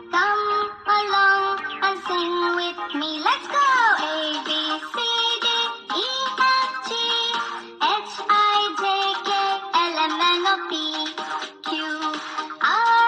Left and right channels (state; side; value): identical; both; correlation 1.00